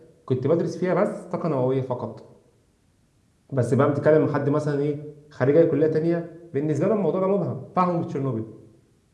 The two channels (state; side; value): identical; both; correlation 1.00